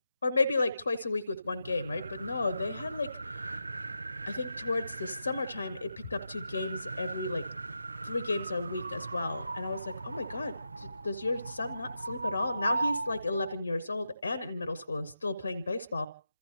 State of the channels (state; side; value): inverted; both; correlation -0.87